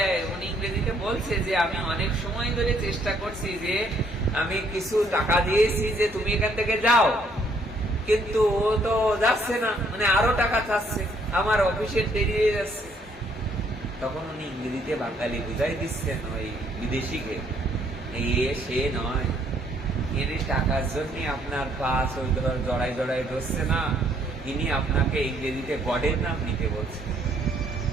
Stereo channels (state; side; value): normal; both; correlation 0.67